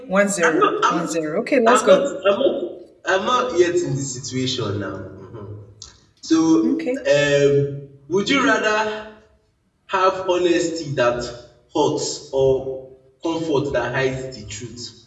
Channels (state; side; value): identical; both; correlation 1.00